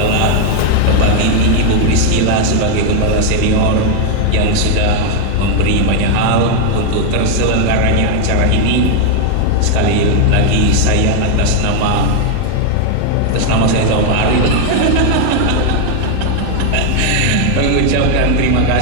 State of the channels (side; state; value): both; different; correlation 0.00